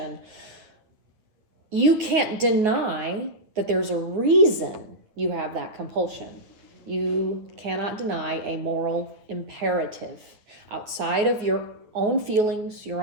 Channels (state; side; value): late; left; 9.2 ms